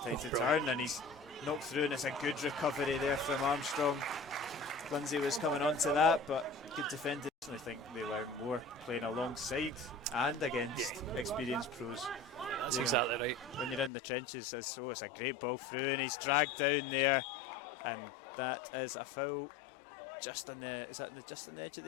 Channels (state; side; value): drops out; right; at 13.9 s